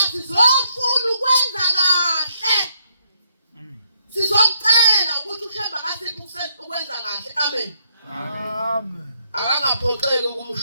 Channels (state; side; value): inverted; both; correlation -0.75